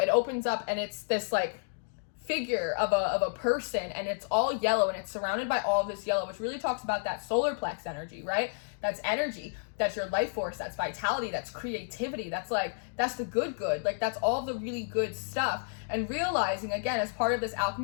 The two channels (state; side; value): silent; right; digital silence